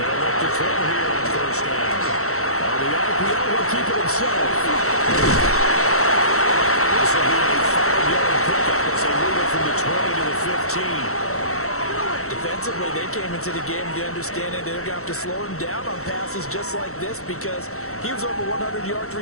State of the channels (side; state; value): right; late; 0.64 ms